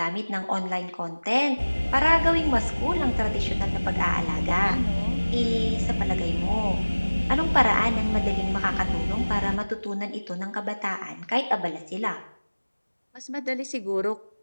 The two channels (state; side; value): inverted; both; correlation -1.00